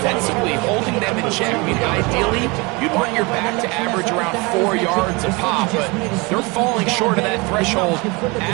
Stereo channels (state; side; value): quieter; left; 26.8 dB